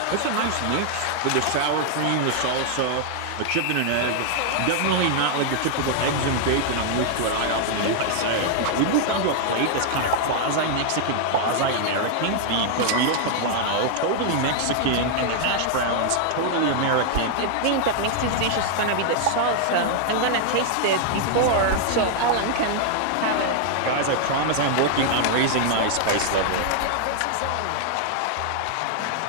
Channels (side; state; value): both; different; correlation 0.00